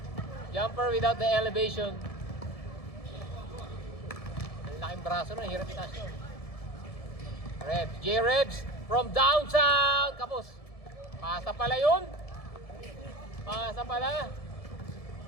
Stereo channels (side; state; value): right; late; 1.7 ms